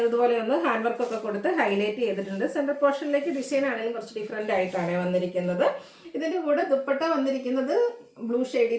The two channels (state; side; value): identical; both; correlation 1.00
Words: ഇതുപോലെ ഒന്ന് ഹാൻഡ് വർക്കൊക്കെ കൊടുത്ത് ഹൈലൈറ്റ് ചെയ്തിട്ടുണ്ട്. സെൻറ്റർ പോർഷനിലേക്ക് ഡിസൈൻ ആണെങ്കിലും കുറച്ച് ഡിഫറെൻ്റ് ആയിട്ടാണ് വന്നിരിക്കുന്നത്. ഇതിൻ്റെ കൂടെ ദുപ്പട്ട വന്നിരിക്കുന്നത് ബ്ലൂ